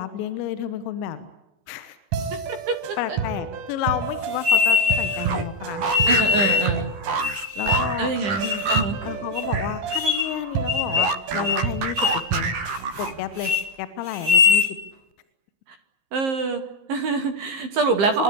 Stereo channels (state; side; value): late; left; 15 ms